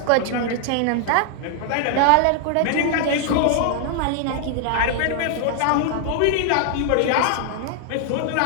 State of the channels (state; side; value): different; both; correlation 0.00